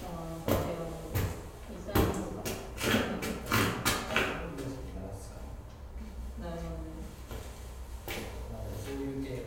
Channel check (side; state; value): both; identical; correlation 1.00